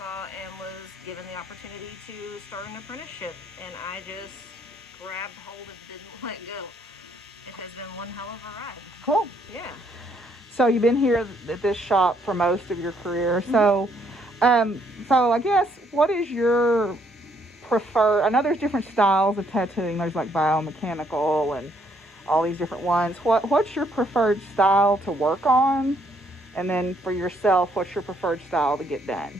and was given the opportunity to start an apprenticeship, and I just grabbed hold and didn't let go. It has been one hell of a ride. Cool. Yeah. So you've been here at this shop for most of your career. So, so I guess what is your preferred? I know there's different styles of tattooing. There's like biomechanical and all these different ones. What's your preferred style to work on? And then for yourself, what's your preferred style to get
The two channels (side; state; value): both; normal; correlation 0.69